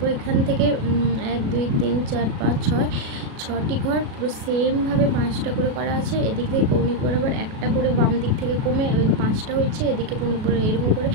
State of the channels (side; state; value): left; late; 37 ms